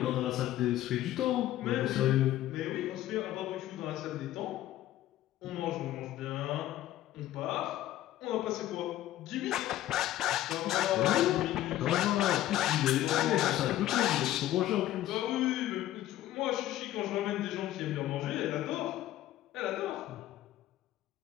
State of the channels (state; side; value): quieter; right; 13.9 dB